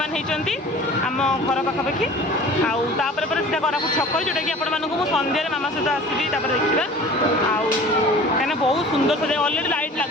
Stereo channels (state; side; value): normal; both; correlation 0.43